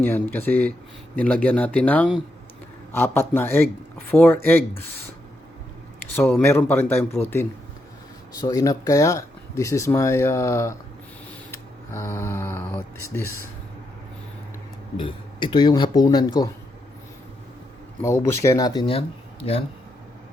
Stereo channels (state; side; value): normal; both; correlation 0.82